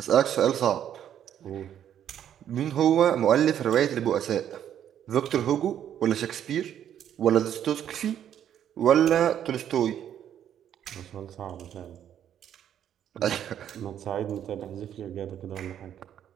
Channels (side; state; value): left; quieter; 10.0 dB